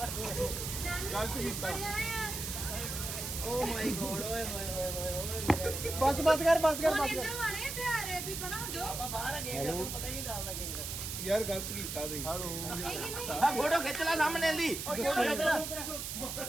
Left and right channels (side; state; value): right; noise; hiss, 5 dB below the sound